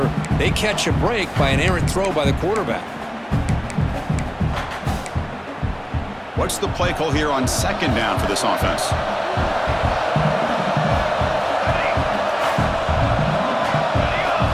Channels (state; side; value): identical; both; correlation 1.00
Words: They catch a break by an errant throw by the quarterback. What's the play call here on 2nd down for this offense?